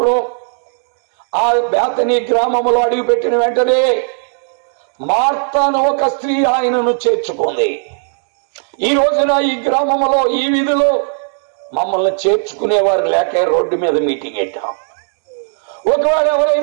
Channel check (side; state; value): left; silent; 70 dB below the other